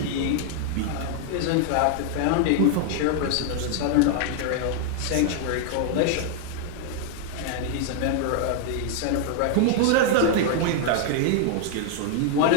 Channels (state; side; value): different; both; correlation 0.00